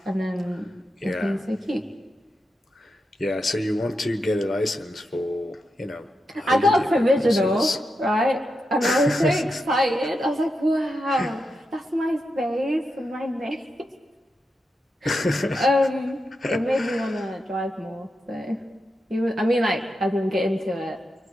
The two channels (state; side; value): normal; both; correlation 0.87